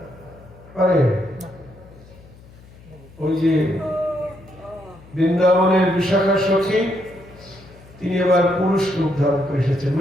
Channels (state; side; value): noise; left; hum, 22 dB below the sound